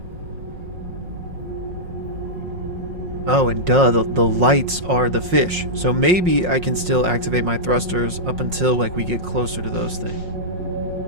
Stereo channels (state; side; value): late; left; 5.5 ms